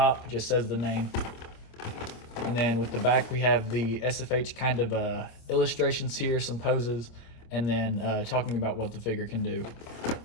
just says the name, and then with the back we have the SFH kind of illustrations here, some poses, and then talking about what the figure can do.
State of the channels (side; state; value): right; late; 25 ms